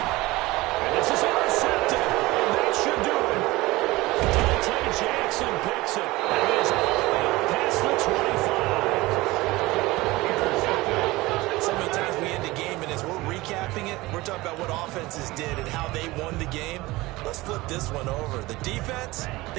And this is intercepted. And that should do it. Dante Jackson picks it. And is all the way up past the 25. So many times we end a game, and as we're recapping it, we're talking about what offenses did and how they won the game. Let's flip this one over. The defense,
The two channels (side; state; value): left; quieter; 20.2 dB